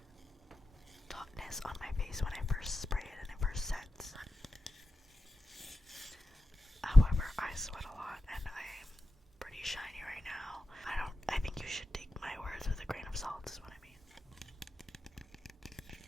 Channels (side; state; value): both; normal; correlation 0.93